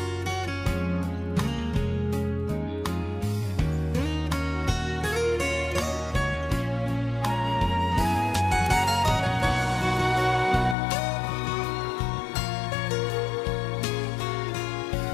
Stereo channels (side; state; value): right; drops out; at 10.8 s